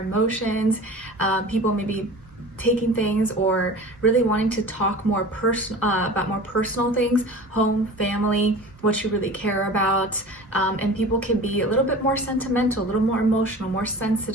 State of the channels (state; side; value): normal; both; correlation 0.38